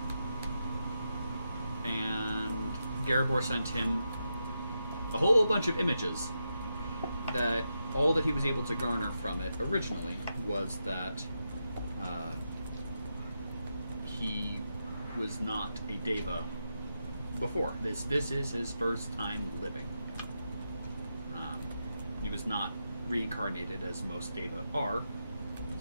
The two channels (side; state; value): both; inverted; correlation -0.86